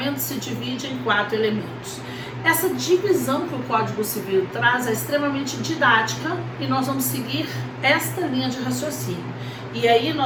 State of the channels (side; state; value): both; identical; correlation 1.00